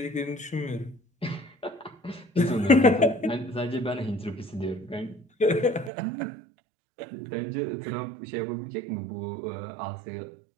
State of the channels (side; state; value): left; drops out; at 5.9 s